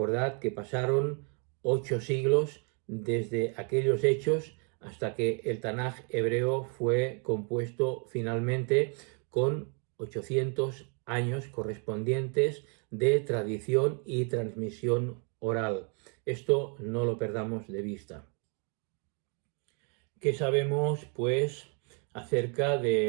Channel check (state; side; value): quieter; left; 38.3 dB